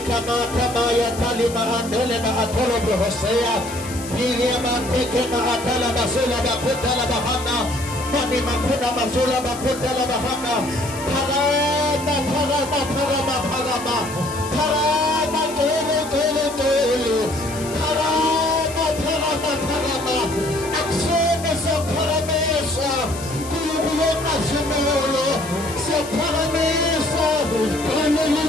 maya talima andele na atolo brohoseya. Filia mateke na atala basula bakhuthala bahanda. Mani makuna basula bakhuthala bahanda. Parama aksiyonu sa paramesa kuyukuleka simolo sa paramesa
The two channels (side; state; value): left; noise; hiss, 13 dB below the sound